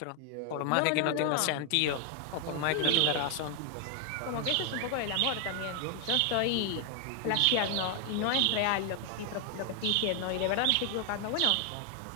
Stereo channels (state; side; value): different; both; correlation 0.00